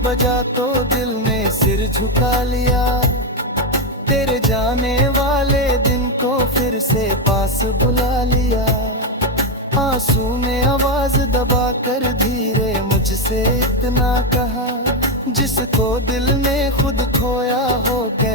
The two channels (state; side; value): normal; both; correlation 0.07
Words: बजा तो दिल ने सिर झुका लिया, तेरे जाने वाले दिन को फिर से पास बुला लिया। आंसू ने आवाज दबा कर धीरे मुझसे इतना कहा, जिसको दिल ने खुद खोया हो